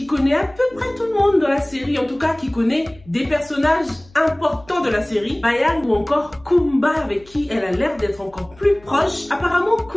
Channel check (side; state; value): left; noise; hum, 26 dB below the sound